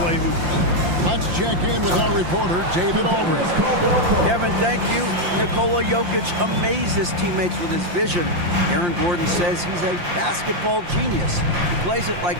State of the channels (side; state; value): left; late; 5.7 ms